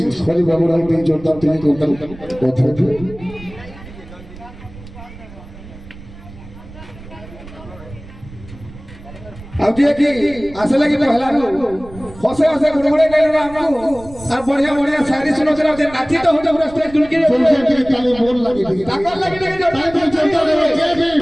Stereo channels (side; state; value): right; noise; rumble, 17 dB below the sound